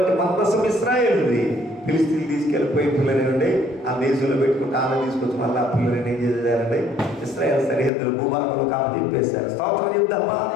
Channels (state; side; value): drops out; right; at 7.9 s